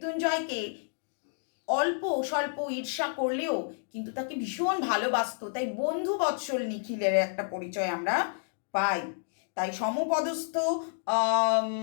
অল্প স্বল্প ঈর্ষা করলেও কিন্তু তাকে ভীষণ ভালোবাসতো। তাই বন্ধু বৎসল নিখিলের একটা পরিচয় আমরা পাই। তাই সমপদস্থ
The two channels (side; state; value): right; silent; digital silence